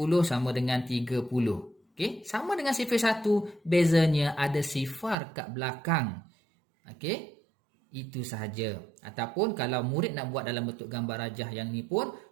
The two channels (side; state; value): left; drops out; at 5.2 s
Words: sama dengan 30. Okey, sama dengan sifir 1, bezanya ada sifar kat belakang. Okey, itu sahaja. Ataupun kalau murid nak buat dalam bentuk gambar rajah yang ni pun